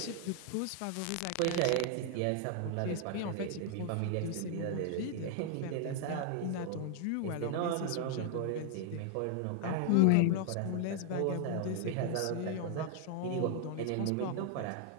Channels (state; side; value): different; both; correlation 0.00